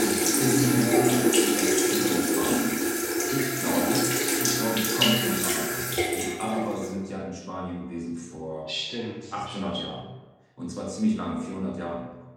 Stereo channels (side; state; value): both; identical; correlation 1.00